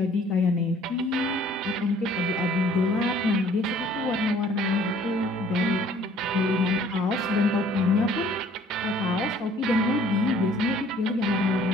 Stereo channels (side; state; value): both; normal; correlation 0.56